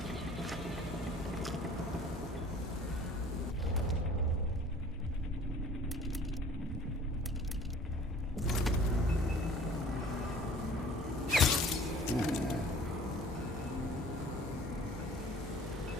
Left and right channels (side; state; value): both; normal; correlation 0.49